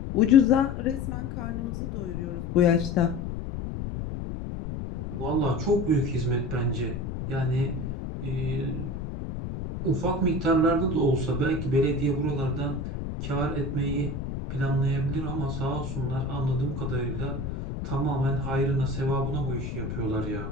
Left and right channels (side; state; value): left; noise; rumble, 5 dB below the sound